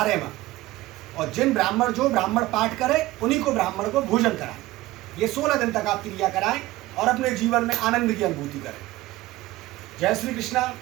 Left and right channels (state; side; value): quieter; left; 17.6 dB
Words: और जो ब्राह्मण पाठ करे उन्हीं को ब्राह्मण को भोजन कराएं। ये 16 दिन तक आप क्रिया कराएं और अपने जीवन में आनंद की अनुभूति करें। जय श्री कृष्णा,